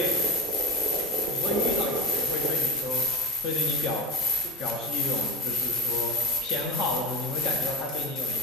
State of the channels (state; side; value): normal; both; correlation 0.33